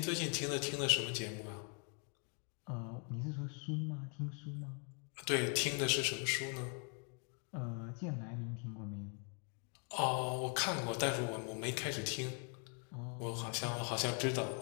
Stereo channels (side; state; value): right; quieter; 39.7 dB